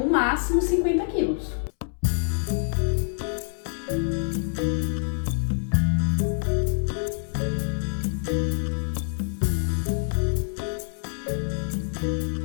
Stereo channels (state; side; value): silent; right; 61 dB below the other